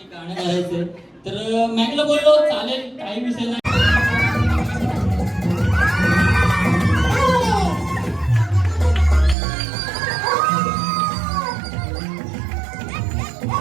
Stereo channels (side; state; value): left; drops out; at 9.3 s